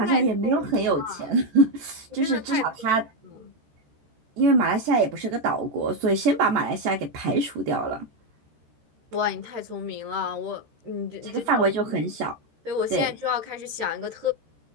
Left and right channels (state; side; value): late; left; 14 ms